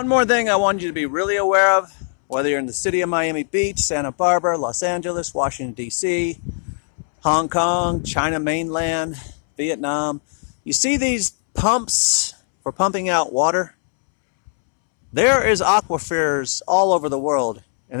more thing I want you to be really aware of, whether you're in the city of Miami Beach, Santa Barbara, Los Angeles, Washington, D.C., Hong Kong, China mainland, Vietnam, you see these pumps for pumping out water? There is aquifers all over the world,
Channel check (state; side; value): silent; right; 66 dB below the other